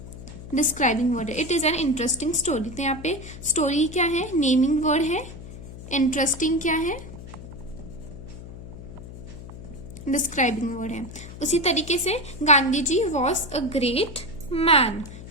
डिस्क्राइबिंग वर्ड है। It is an interesting story. तो यहाँ पे स्टोरी क्या है, नेमिंग वर्ड है, इंटरेस्टिंग क्या है, डिस्क्राइबिंग वर्ड है। उसी तरीके से Gandhi ji was a great man.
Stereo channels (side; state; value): left; noise; hum, 13 dB below the sound